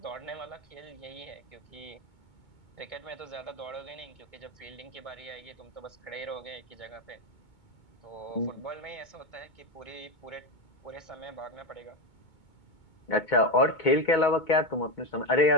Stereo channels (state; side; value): late; right; 2.2 ms